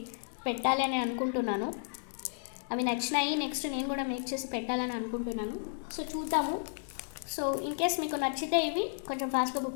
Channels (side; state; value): right; silent; 56 dB below the other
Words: పెట్టాలి అని అనుకుంటున్నాను. సో చూద్దాము. సో ఇన్ కేస్ మీకు నచ్చితే ఇవి కొంచెం ఫాస్ట్గా బుక్